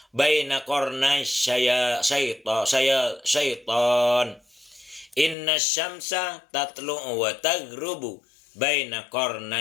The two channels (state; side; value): drops out; right; at 5.4 s